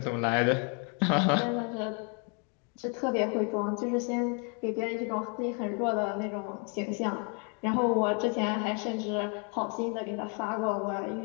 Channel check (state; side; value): quieter; right; 36.9 dB